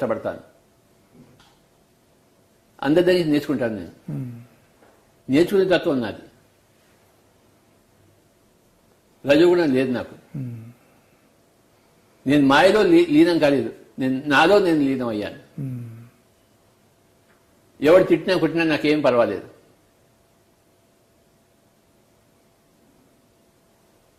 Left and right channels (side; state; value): both; identical; correlation 1.00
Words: అందరి దగ్గర నేర్చుకుంటాను. నేను నేర్చుకునే తత్వం నాది. రజోగుణం లేదు నాకు. నేను మాయలో లీనం కాలేదు, నాలో నేను లీనం అయ్యాను. ఎవడు తిట్టినా కొట్టినా నాకేం పర్వాలేదు.